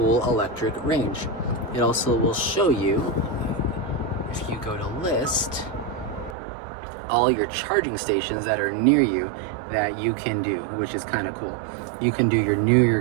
electric range. It also will show you, if you go to list, all your charging stations that are near you that you can do, which is kind of cool. You can do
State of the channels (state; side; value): drops out; left; at 6.4 s